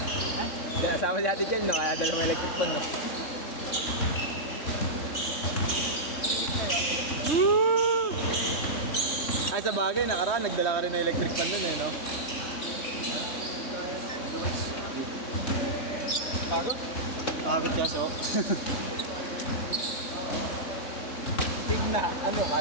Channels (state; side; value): late; right; 3.6 ms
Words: Kasama si Ate Chel no? Kaya dala mo electric pan no? Ay sa bagay, nakaraan, nagdala ka rin ng electric pan nun eh no? Pagod? Pagod ka so. Tigna, ano